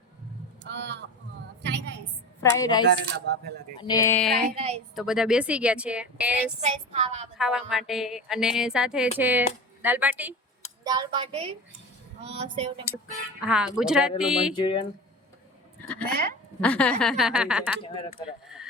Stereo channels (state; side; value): normal; both; correlation 0.31